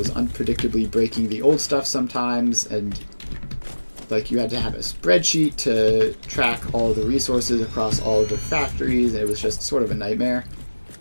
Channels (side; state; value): both; inverted; correlation -1.00